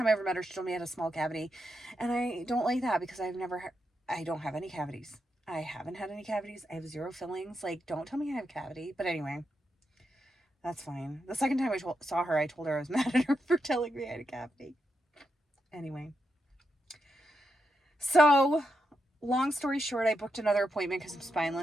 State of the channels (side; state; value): both; normal; correlation 0.84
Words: I ever met her, she told me I had a small cavity. And I don't like that because I don't have any cavities. I haven't had any cavities. I have 0 fillings. Like, don't tell me I have a cavity. But anyway, that's fine. The second time I saw her, I told her I was mad at her for telling me I had a cavity. Anyway. So, long story short, I booked another appointment because I'm